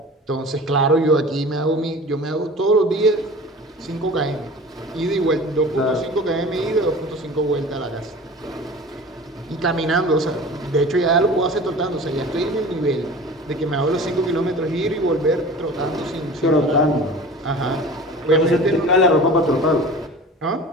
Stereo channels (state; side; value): normal; both; correlation 0.39